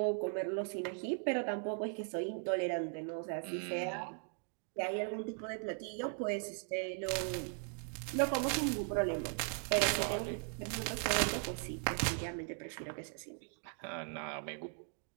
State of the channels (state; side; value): silent; left; 52 dB below the other